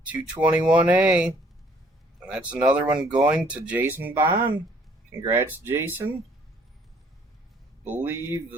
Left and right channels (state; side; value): normal; both; correlation 0.61